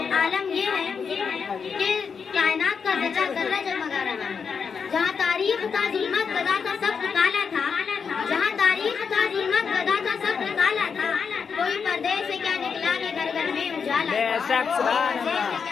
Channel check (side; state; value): right; quieter; 6.1 dB